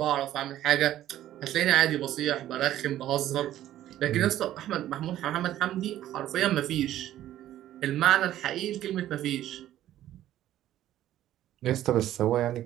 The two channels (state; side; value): quieter; left; 12.9 dB